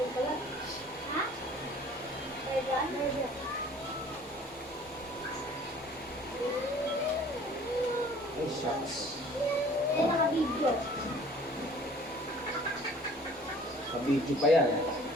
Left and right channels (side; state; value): both; normal; correlation 0.51